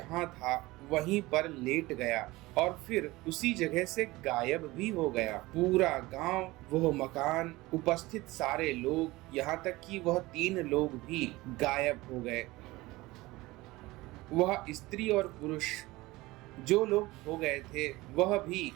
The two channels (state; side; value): quieter; left; 20.2 dB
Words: था वहीं पर लेट गया और फिर उसी जगह से गायब भी हो गया। पूरा गांव, वह मकान, उपस्थित सारे लोग, यहाँ तक कि वह 3 लोग भी गायब हो गए। वह स्त्री और पुरुष जो लोग हो गए थे वह भी